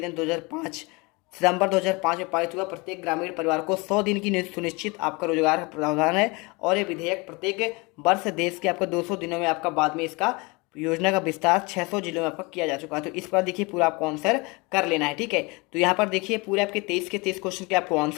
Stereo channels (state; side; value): quieter; right; 26.8 dB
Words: 2005 सितंबर 2005 में पारित हुआ। प्रत्येक ग्रामीण परिवार को 100 दिन की सुनिश्चित आपका रोजगार प्रावधान है, और ये विधेयक प्रत्येक वर्ष देश के आपका 200 दिनों में आपका बाद में इसका योजना का विस्तार 600 जिलों में आपका किया जा चुका है। तो इस पर देखिए पूरा आपको आंसर कर लेना है, ठीक है। तो यहाँ पर देखिए पूरे आपके 23 के 23 क्वेश्चन के आपको